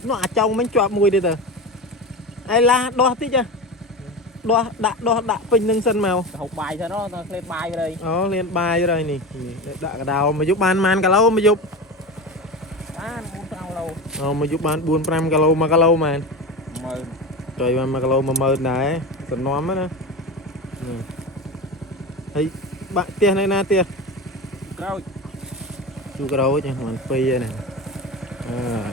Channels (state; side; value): normal; both; correlation 0.26